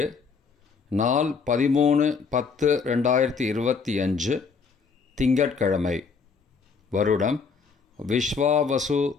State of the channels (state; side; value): quieter; right; 5.3 dB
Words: நாள் 13/10/2025, திங்கட்கிழமை. வருடம் விஸ்வாவசு